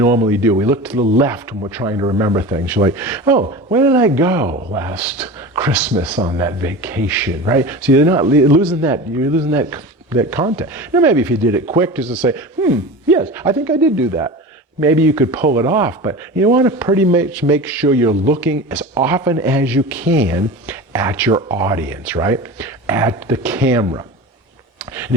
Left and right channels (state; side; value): normal; both; correlation 0.31